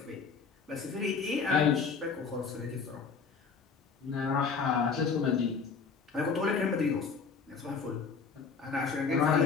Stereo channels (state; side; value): quieter; right; 5.4 dB